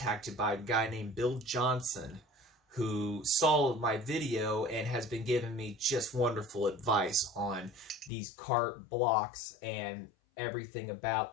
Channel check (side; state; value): right; drops out; at 8.1 s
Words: by a guy named Bill Johnson, who saw my video and has been giving me just wonderful advice on these kart blocks and everything